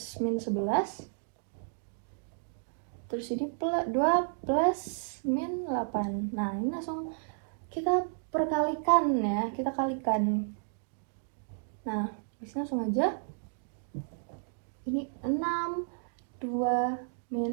min 11, terus ini 2 plus min 8. Nah, ini langsung kita perkalikan ya, kita kalikan. Nah, bisa langsung aja. Ini 6, 2,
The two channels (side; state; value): left; silent; digital silence